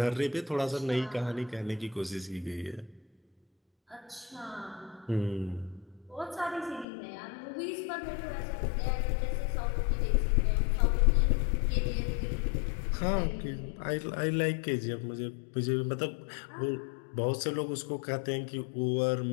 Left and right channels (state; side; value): drops out; right; at 6.9 s